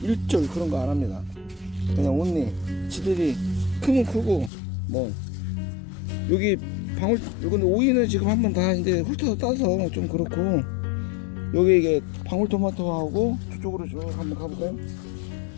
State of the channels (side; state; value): right; drops out; at 4.5 s